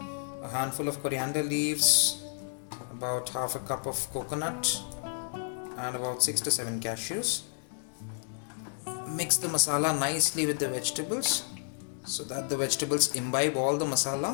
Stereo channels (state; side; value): silent; right; digital silence